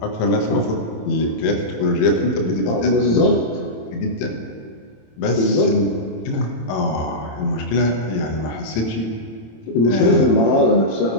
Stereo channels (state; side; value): late; right; 27 ms